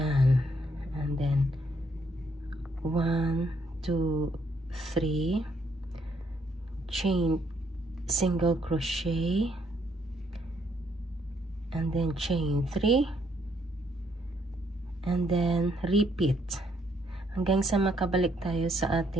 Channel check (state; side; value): normal; both; correlation 0.71